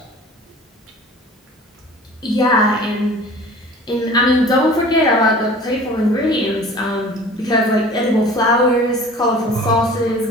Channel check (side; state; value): both; normal; correlation 0.44